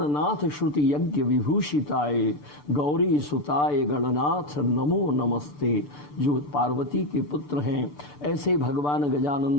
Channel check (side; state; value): right; late; 6.8 ms